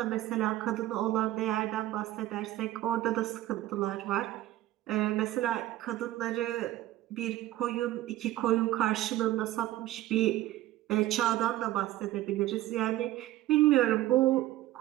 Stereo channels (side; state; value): left; quieter; 15.1 dB